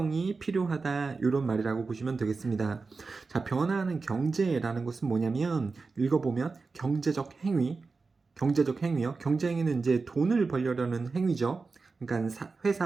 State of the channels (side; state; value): left; quieter; 4.2 dB